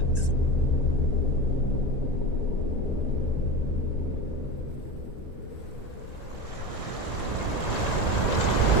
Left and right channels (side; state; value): right; late; 1.9 ms